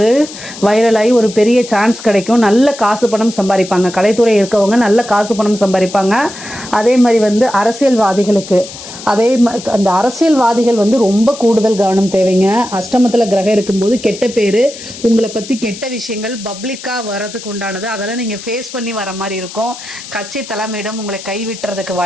வைரலாகி ஒரு பெரிய சான்ஸ் கிடைக்கும். நல்ல காசு பணம் சம்பாதிப்பாங்க. கலைத்துறை இருக்கவங்க நல்ல காசு பணம் சம்பாதிப்பாங்க. அதே மாதிரி வந்து அரசியல்வாதிகளுக்கு அந்த அரசியல்வாதிகள் வந்து ரொம்ப கூடுதல் கவனம் தேவைங்க. அஷ்டமத்தில் கிரகம் இருக்கும்போது கெட்ட பேர், உங்களை பற்றி கெட்ட விஷயங்கள் பப்ளிக்காக வரதுக்கு உண்டானது, அதெல்லாம் நீங்கள் ஃபேஸ் பண்ணி வர மாதிரி இருக்கும். கட்சி தலைமையிடம் உங்களை கைவிட்டுறதுக்கு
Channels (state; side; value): noise; left; hiss, 13 dB below the sound